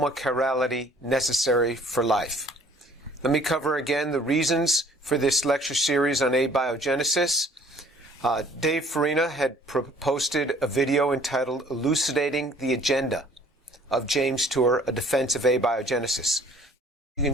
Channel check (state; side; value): normal; both; correlation 0.56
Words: necessary for life. Let me cover again the reasons for this lecture series on abiogenesis. Dave Farina had posted a video entitled Elucidating the Agenda of James Tour, A Defense of Abiogenesis. You